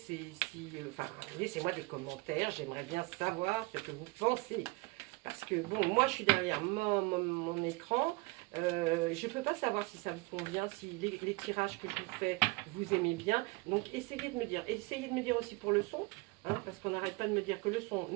enfin, laissez-moi des commentaires, j'aimerais bien savoir ce que vous pensez. Parce que bon, moi je suis derrière mon écran, je ne peux pas savoir si ça vous convient, si les tirages que je vous fais, vous aimez bien. Donc essayez de me dire aussi pour le son, hein, parce qu'on n'arrête pas de me dire que le son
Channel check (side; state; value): left; quieter; 25.0 dB